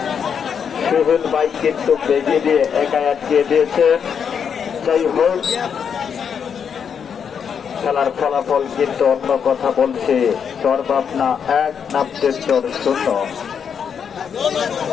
সোহেল ভাই কিন্তু বেগে দিয়ে একাই আটকে দিয়েছে। যাই হোক, খেলার ফলাফল কিন্তু অন্য কথা বলছে। চরভাবনা 1, নামতের চর 0।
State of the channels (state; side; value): quieter; right; 7.2 dB